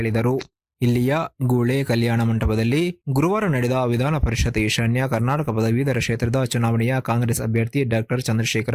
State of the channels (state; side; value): identical; both; correlation 1.00